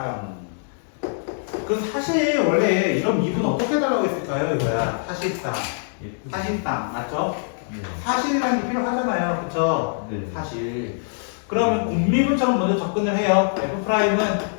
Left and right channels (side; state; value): right; silent; digital silence